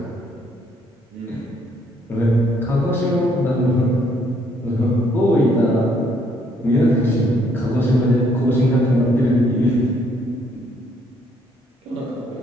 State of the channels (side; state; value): both; normal; correlation 0.68